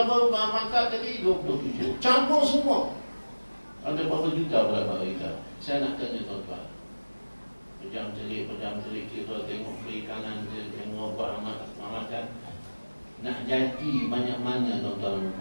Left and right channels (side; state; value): both; inverted; correlation -1.00